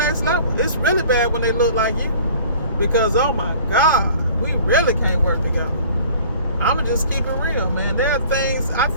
level. It's really bad when they look like you. Because, oh my God, we really can't work together. I'm going to just keep it real, man. There are things, I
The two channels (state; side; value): inverted; both; correlation -0.49